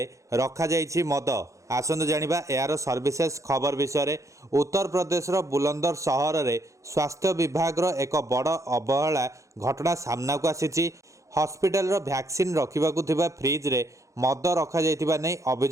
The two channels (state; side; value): late; left; 0.15 ms